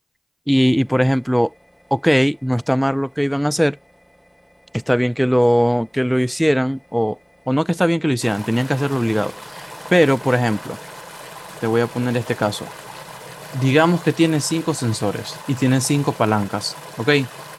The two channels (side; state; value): both; identical; correlation 1.00